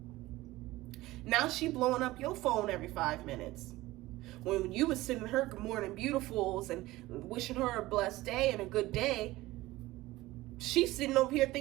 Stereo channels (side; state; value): left; quieter; 18.2 dB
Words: Now she blowing up your phone every 5 minutes. When you was sending her good morning beautifuls and wishing her a blessed day and a good day, she's sitting over here